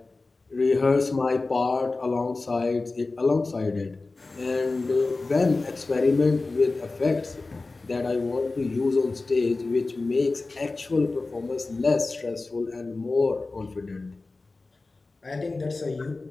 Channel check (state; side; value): quieter; right; 3.5 dB